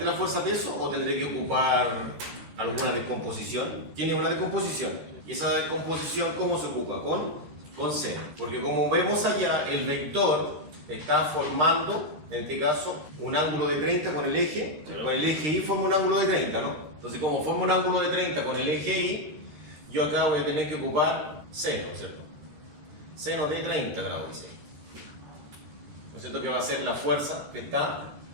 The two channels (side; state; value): left; late; 13 ms